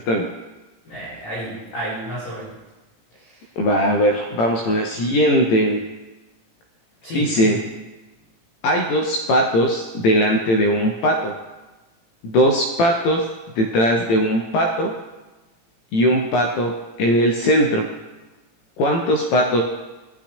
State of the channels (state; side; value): late; right; 18 ms